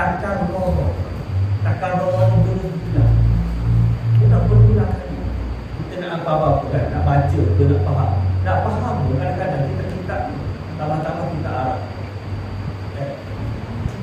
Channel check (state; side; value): identical; both; correlation 1.00